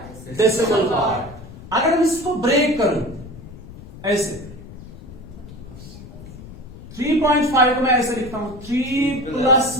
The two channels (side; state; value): left; noise; rumble, 15 dB below the sound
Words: डेसिमल पार्ट. अगर मैं इसको ब्रेक करूं ऐसे, 3.5 को मैं ऐसे लिखता हूं 3 plus